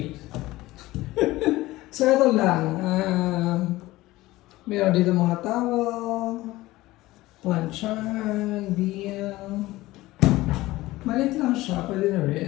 So ito lang. Meron dito mga towel. Planchan, bill. Malit lang siya, pwede na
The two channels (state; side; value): quieter; right; 18.1 dB